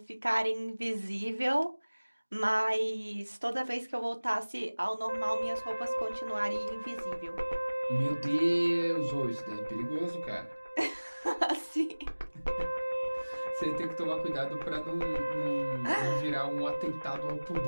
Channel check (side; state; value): both; inverted; correlation -1.00